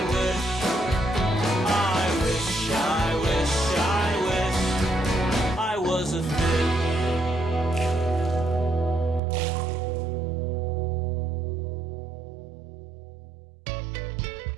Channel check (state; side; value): drops out; left; at 9.2 s